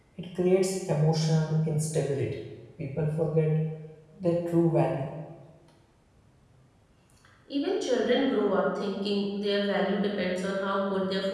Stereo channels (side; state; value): both; identical; correlation 1.00